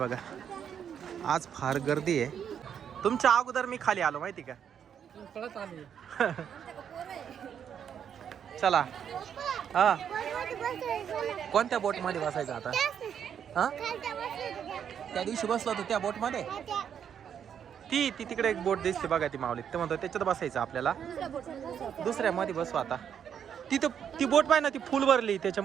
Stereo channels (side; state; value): left; quieter; 8.4 dB